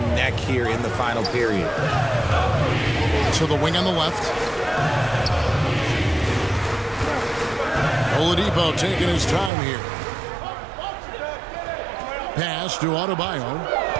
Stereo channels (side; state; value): left; drops out; at 9.5 s